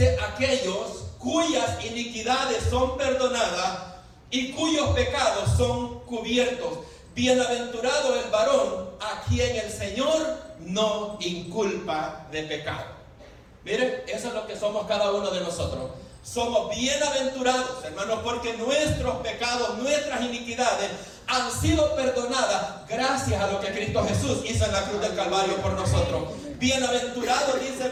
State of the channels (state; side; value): identical; both; correlation 1.00